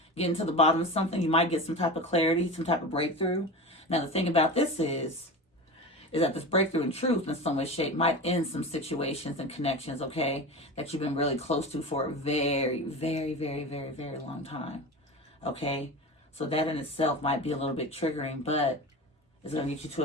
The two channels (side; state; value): both; normal; correlation 0.29